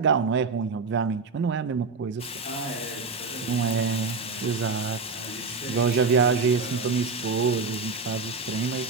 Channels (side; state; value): left; quieter; 4.4 dB